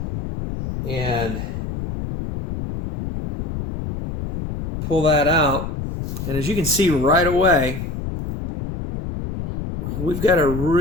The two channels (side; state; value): left; noise; rumble, 6 dB below the sound